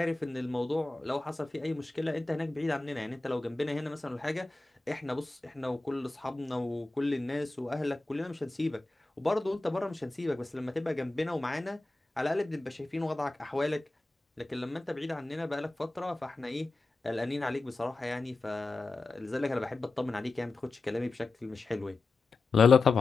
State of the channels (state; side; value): quieter; right; 3.3 dB